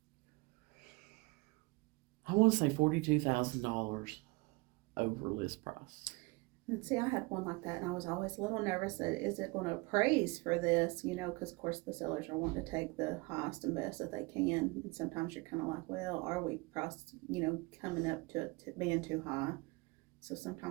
I want to say $42,000 over list price. And see, I had one like that, and I was always a little nervous that, is it going to appraise for this, because of course the sellers are wanting to take the highest and best that they can, and sometimes you're kind of like, well, are we priced, coming up to being too high? So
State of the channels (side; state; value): left; quieter; 25.8 dB